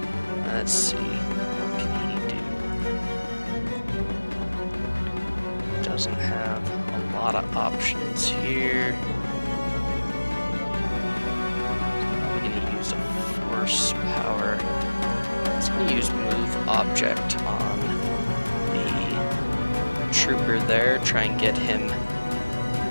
Let's see. Doesn't have a lot of options here. Probably going to use a force power. It's going to use move object on the trooper there. Try and get him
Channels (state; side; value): inverted; both; correlation -1.00